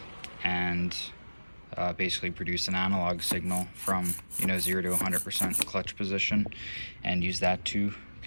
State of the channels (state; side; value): inverted; both; correlation -1.00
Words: and basically produce an analog signal from 0 to 100% clutch position, and use that to